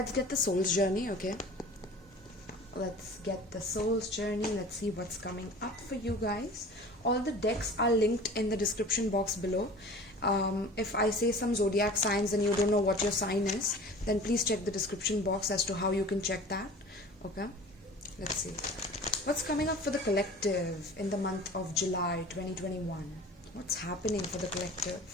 get the soul's journey, okay? Let's get the soul's journey. Let's see what's coming up for you guys. All the decks are linked in the description box below. If I say some zodiac signs and you don't know what your sign is, then please check the description box as to how you can check that. Okay, let's see what's coming up for the collective in the month of July 2021. What's happening for the collective?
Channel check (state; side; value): normal; both; correlation 0.41